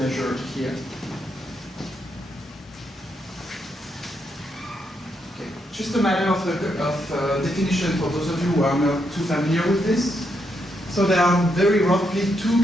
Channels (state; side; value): normal; both; correlation 0.79